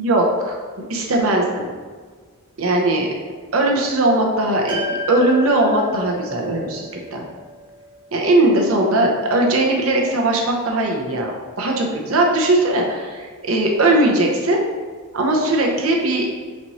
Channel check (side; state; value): both; normal; correlation 0.13